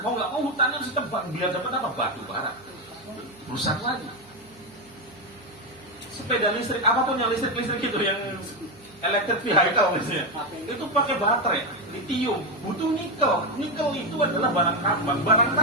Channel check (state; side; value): noise; right; hum, 30 dB below the sound